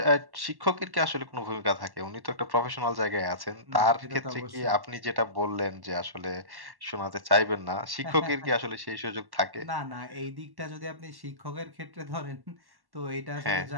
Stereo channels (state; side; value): late; left; 1.1 ms